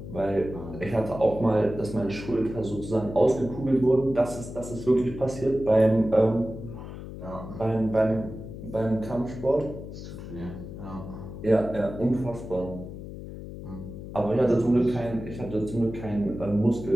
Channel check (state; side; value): noise; left; hum, 11 dB below the sound